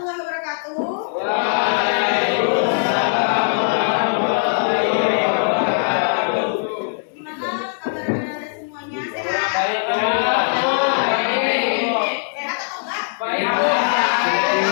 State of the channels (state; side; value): silent; right; digital silence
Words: wabarakatuh. Gimana kabar anda semuanya? Sehat? Sehat atau enggak? Baik.